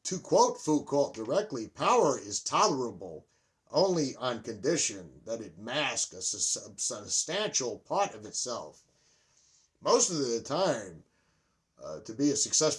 to quote Foucault directly, power is tolerable only on condition that it masks a substantial part of itself. Most of the time, to be a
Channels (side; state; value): both; identical; correlation 1.00